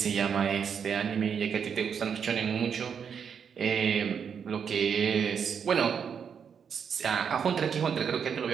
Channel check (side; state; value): left; quieter; 7.1 dB